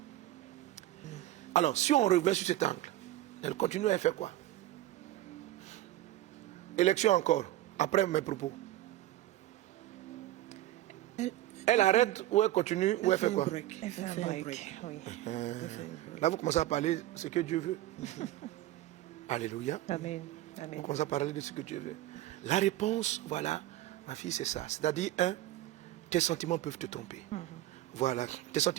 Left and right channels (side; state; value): left; quieter; 14.8 dB